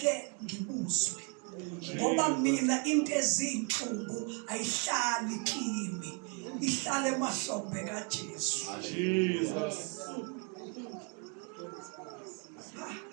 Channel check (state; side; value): quieter; left; 36.5 dB